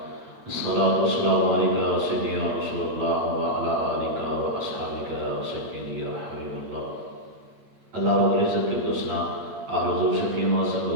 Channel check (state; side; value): late; left; 8.7 ms